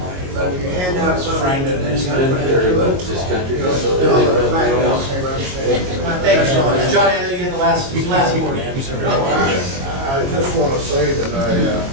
But if you hand out something that then you gotta put into it, Thank you, John. Johnny, I know you had the last word. I just want to say that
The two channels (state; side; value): late; left; 22 ms